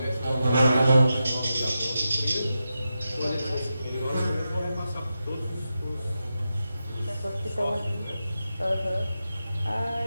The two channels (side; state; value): both; inverted; correlation -0.90